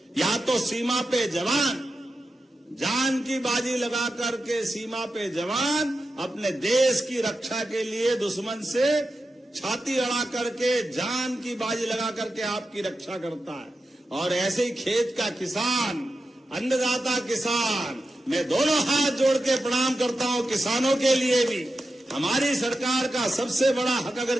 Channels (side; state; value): both; normal; correlation 0.90